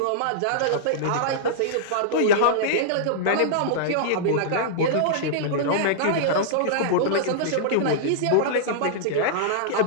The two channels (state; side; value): different; both; correlation -0.02